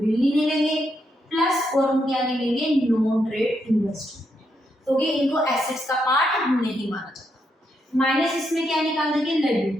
नहीं लेंगे प्लस और हम क्या नहीं लेंगे, नॉन ट्रेड इन्वेस्टमेंट, क्योंकि इनको एसेट्स का पार्ट नहीं माना जाता। माइनस इसमें क्या निकाल देंगे,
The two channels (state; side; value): normal; both; correlation 0.79